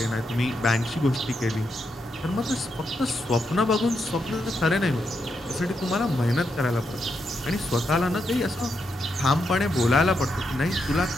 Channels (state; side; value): normal; both; correlation 0.82